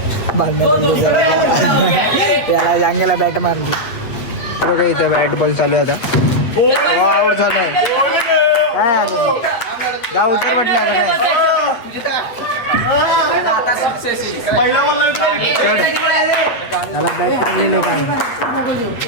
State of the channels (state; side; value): late; right; 8.4 ms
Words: भांडण्यात त्याला जांगेला बॅट मारली बघा. इथं बॅट बॉल चालू आहे आता. आउट झालाय. काय आलं गाव उतर म्हटलं आता काय. त्याला बॅट मारली लोकांना.